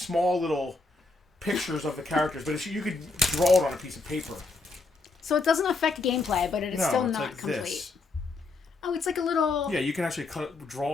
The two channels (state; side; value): quieter; right; 3.6 dB